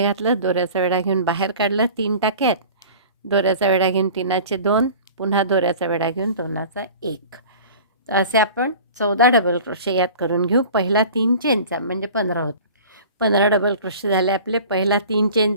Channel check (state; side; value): inverted; both; correlation -0.42